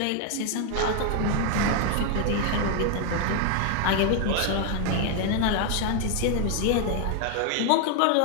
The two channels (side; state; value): both; different; correlation 0.01